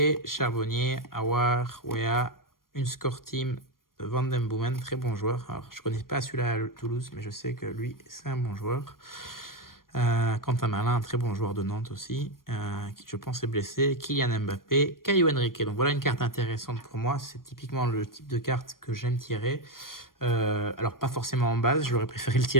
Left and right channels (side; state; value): right; late; 0.91 ms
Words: Charbonnier, Awar, Wea, une score team de Van den Boomen, très bon joueur. Alors, je ne connais pas celui-là à Toulouse, mais je sais que lui, c'est un bon joueur. Quentin Malin, un très bon joueur de Nantes aussi, qui je pense est blessé. Kylian Mbappé, Caio Henrique. Donc voilà une carte intéressante pour moi. C'est typiquement le type de carte que j'aime tirer. Alors pas forcément en base, j'aurais préféré le